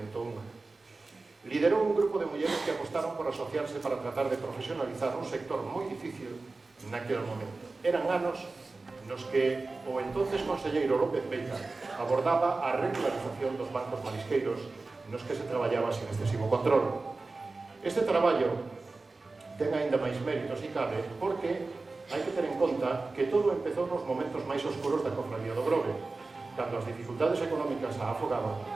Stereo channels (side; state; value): left; quieter; 3.6 dB